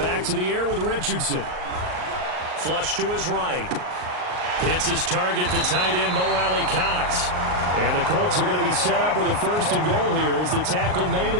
to the air with Richardson. Flush to his right. Hits his target, the tight end, Mo Alley-Cox. And the Colts are going to be set up with a 1st and goal here as the tackle made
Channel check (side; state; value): left; late; 38 ms